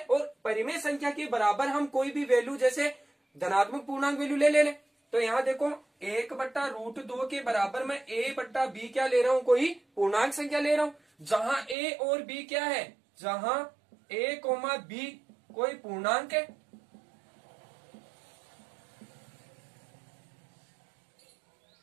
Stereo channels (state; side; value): drops out; left; at 11.8 s